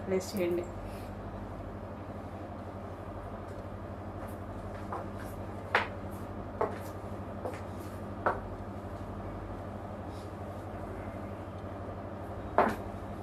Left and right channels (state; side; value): identical; both; correlation 1.00